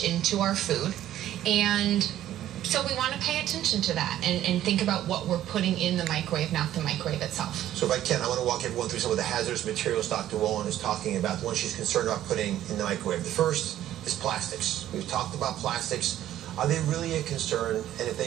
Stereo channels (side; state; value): left; quieter; 12.6 dB